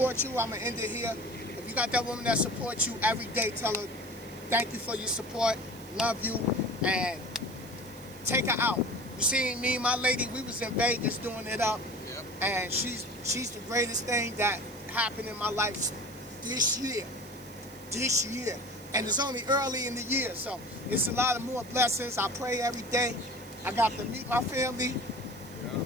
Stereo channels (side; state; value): right; noise; hiss, 19 dB below the sound